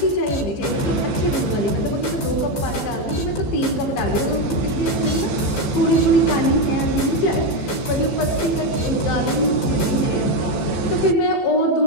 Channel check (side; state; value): right; late; 15 ms